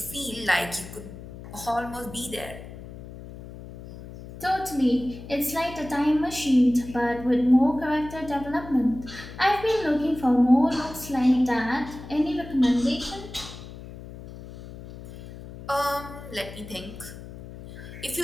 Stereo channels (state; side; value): noise; left; hum, 14 dB below the sound